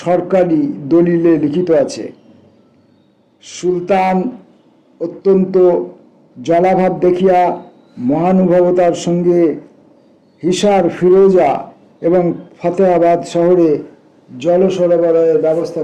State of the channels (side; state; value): both; identical; correlation 1.00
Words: সরকারি দলিলে লিখিত আছে, সুলতান অত্যন্ত জলাভাব দেখিয়া মহানুভবতার সঙ্গে হিসার, ফিরোজা এবং ফতেহাবাদ শহরে জল সরবরাহের ব্যবস্থা